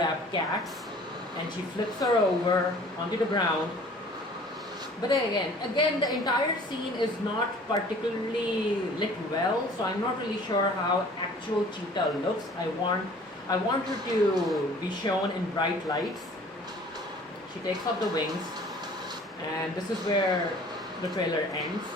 cats, and she flips her over onto the ground. But again, the entire scene is not particularly lit well, so I'm not really sure how actual Cheetah looks. I want her to be shown in bright lights. She takes off the wings, and this is where the trailer ends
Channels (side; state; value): both; normal; correlation 0.50